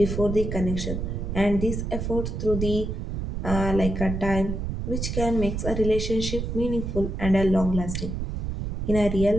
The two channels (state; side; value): noise; right; rumble, 4 dB below the sound